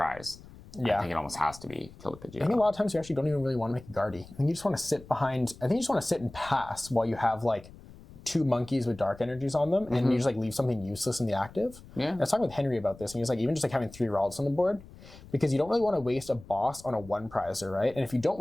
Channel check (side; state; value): left; noise; rumble, 19 dB below the sound